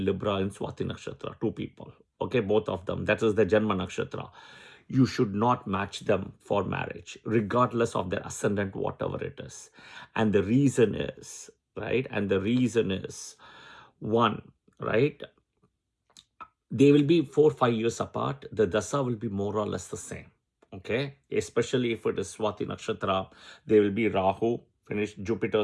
Libra and Swati nakshatra, two people. Okay, both of them, that is the Janma nakshatra. You should not match them for marriage regardless of their ascendant, whatever it is. And the reason is, right, and the reason is, one, right, they will be 4-5 years apart. The dasa will be more or less the same. Okay, especially if it is Swati nakshatra, they will be Rahu, finished, Jupiter,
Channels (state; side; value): identical; both; correlation 1.00